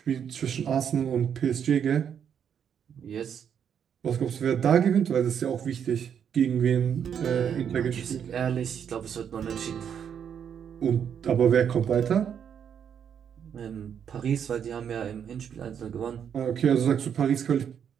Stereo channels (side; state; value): left; quieter; 8.2 dB